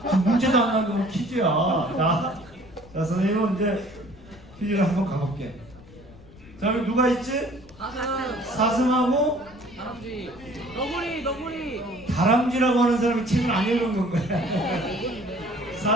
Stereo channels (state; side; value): noise; left; rumble, 21 dB below the sound